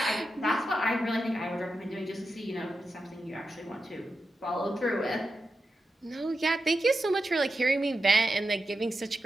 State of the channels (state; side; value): normal; both; correlation 0.90